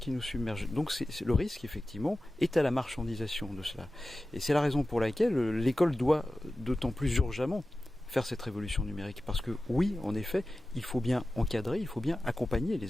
nous submergent. Donc le risque effectivement est à la marchandisation de cela. Et c'est la raison pour laquelle l'école doit d'autant plus urgemment faire cette révolution numérique. Parce que oui, en effet, il faut bien encadrer, il faut bien accompagner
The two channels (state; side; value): normal; both; correlation 0.95